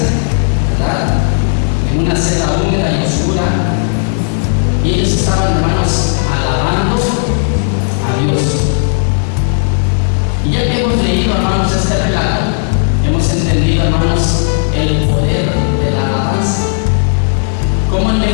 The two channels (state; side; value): silent; right; digital silence